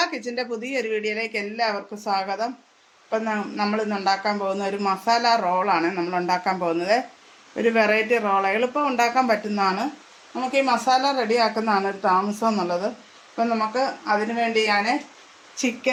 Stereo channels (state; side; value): identical; both; correlation 1.00